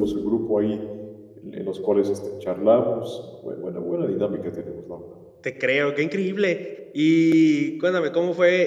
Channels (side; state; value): both; identical; correlation 1.00